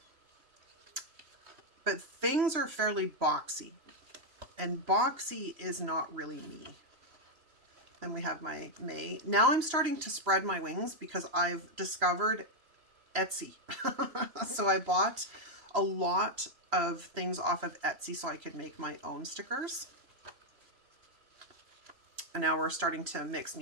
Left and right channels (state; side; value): late; left; 3.0 ms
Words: But things are fairly boxy, and boxy is not really me. Then we have my May. Now I'm starting to spread my wings because I've discovered Etsy. So I bought a lot of things off of Etsy so I could make my own stickers. And now we're starting to mix